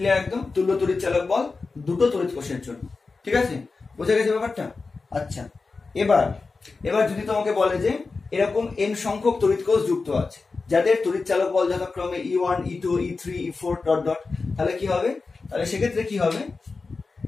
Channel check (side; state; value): right; quieter; 4.1 dB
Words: একদম? তুল্য তড়িৎচালক বল দুটো তড়িৎ কোষের জন্য। ঠিক আছে, বোঝা গেছে ব্যাপারটা? আচ্ছা, এবার যদি তোমাকে বলে যে এরকম n সংখ্যক তড়িৎ কোষ যুক্ত আছে যাদের তড়িৎচালক বল যথাক্রমে E1 E2 E3 E4 dot dot, তাহলে কি হবে, তাহলে সেক্ষেত্রে কি হবে,